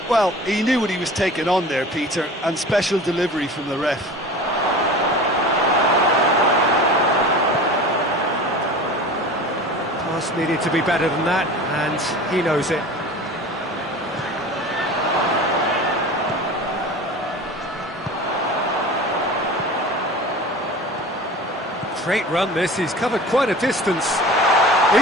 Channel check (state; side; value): normal; both; correlation 0.37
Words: Well, he knew what he was taking on there, Peter, and special delivery from the ref. Pass needed to be better than that, and he knows it. Great run this, he's covered quite a distance.